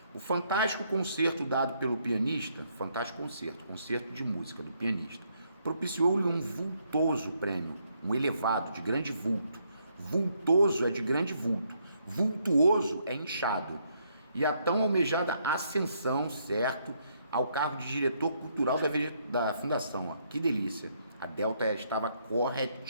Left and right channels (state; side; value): inverted; both; correlation -0.73